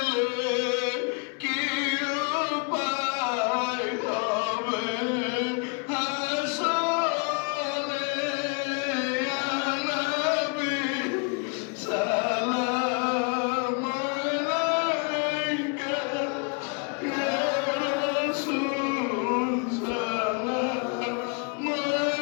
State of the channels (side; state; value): right; quieter; 36.6 dB